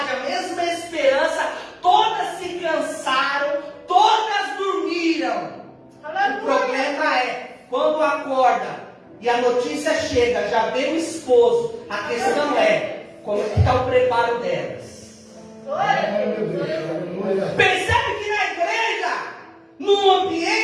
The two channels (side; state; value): both; identical; correlation 1.00